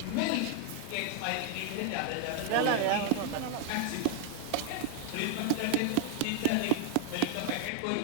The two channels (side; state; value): both; different; correlation 0.00